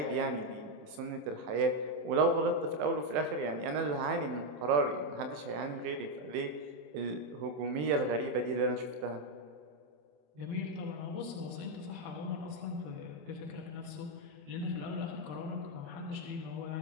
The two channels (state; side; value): late; left; 27 ms